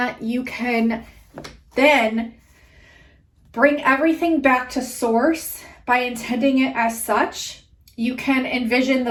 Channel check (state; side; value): identical; both; correlation 1.00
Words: you can then bring everything back to source by intending it as such. You can envision